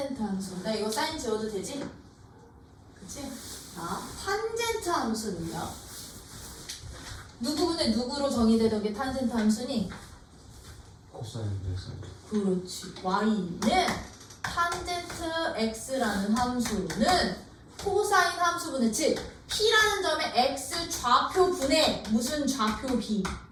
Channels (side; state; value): both; identical; correlation 1.00